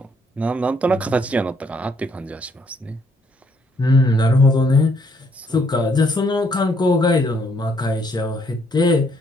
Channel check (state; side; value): normal; both; correlation 0.69